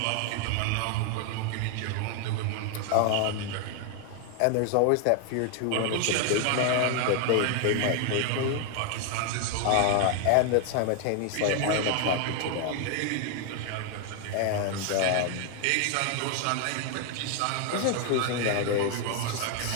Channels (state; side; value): different; both; correlation 0.00